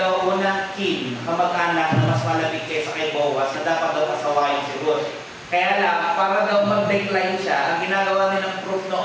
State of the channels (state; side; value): identical; both; correlation 1.00